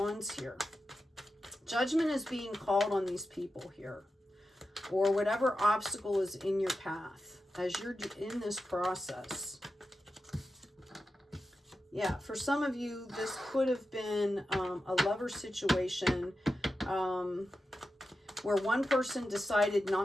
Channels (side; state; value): both; normal; correlation 0.91